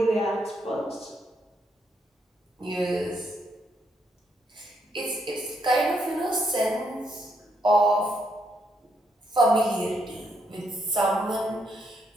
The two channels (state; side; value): normal; both; correlation 0.76